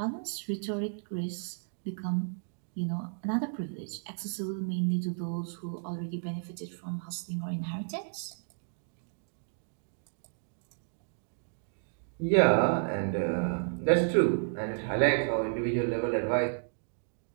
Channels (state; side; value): silent; left; digital silence